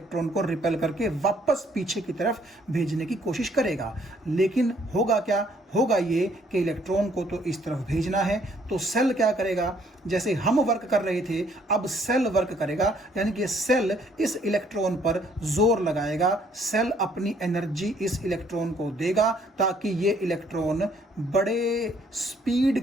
को रिपेल करके वापस पीछे की तरफ भेजने की कोशिश करेगा। लेकिन होगा क्या, होगा ये कि इलेक्ट्रॉन को तो इस तरफ भेजना है, तो सेल क्या करेगा, जैसे हम वर्क कर रहे थे अब सेल वर्क करेगा, यानी कि सेल इस इलेक्ट्रॉन पर जोर लगाएगा, सेल अपनी एनर्जी इस इलेक्ट्रॉन को देगा ताकि ये इलेक्ट्रॉन बड़े स्पीड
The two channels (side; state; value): both; normal; correlation 0.65